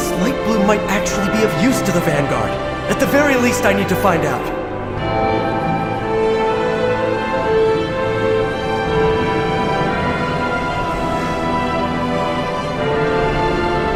light bloom might actually be of use to the Vanguard. At the very least, I need to find out.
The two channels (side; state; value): both; identical; correlation 1.00